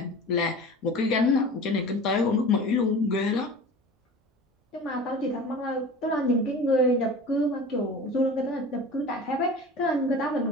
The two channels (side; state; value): both; normal; correlation 0.38